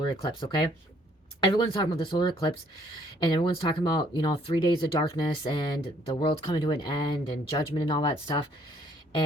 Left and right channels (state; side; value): normal; both; correlation 0.64